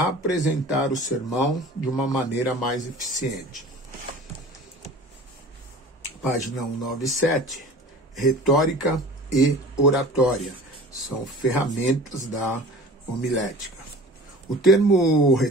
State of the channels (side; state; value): both; normal; correlation 0.41